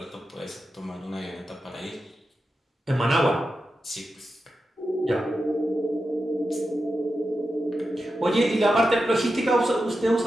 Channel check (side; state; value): both; normal; correlation 0.90